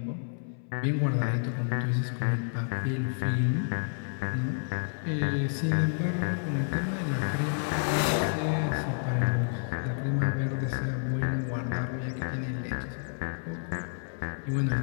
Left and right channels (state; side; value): silent; right; 58 dB below the other